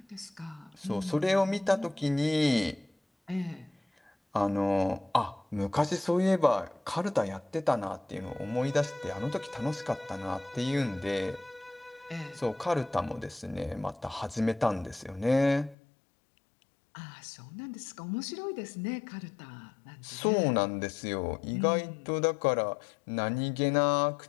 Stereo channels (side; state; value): right; drops out; at 15.8 s